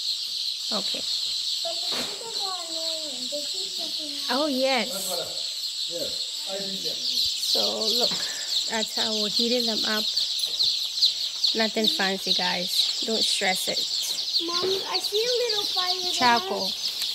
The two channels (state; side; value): identical; both; correlation 1.00